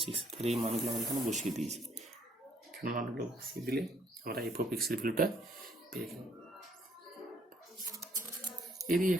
6। তাহলে এই মানগুলো আমরা এখানে বসিয়ে দিয়েছি। এখানে মানগুলো বসিয়ে দিলে আমরা এফ অফ এক্সের ভ্যালুটা পেয়ে গেলাম। এরই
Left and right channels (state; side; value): normal; both; correlation 0.65